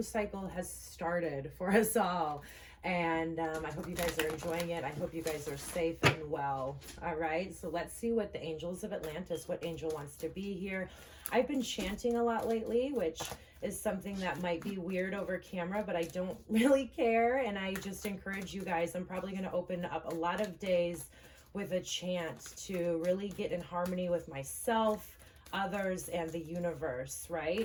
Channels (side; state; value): both; identical; correlation 1.00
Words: cycle has started for us all. And I hope you guys are enjoying it. I hope you guys are safe and well. All right, so let's see what the angels of Atlantis, what angel wants to be here. I've been chanting a lot lately, which is something that might be weird over camera, but I don't really care. And I just encourage you guys, I'm probably going to open up a lot of days with a chant to really get in harmony with myself, others, and the universe,